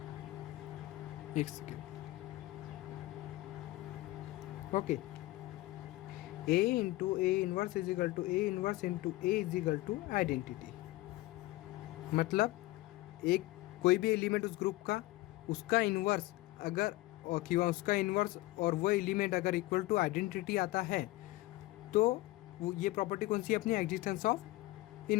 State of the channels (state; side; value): quieter; right; 18.8 dB